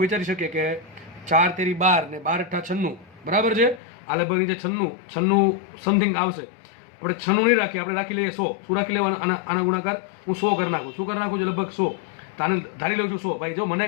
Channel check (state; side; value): drops out; right; at 3.8 s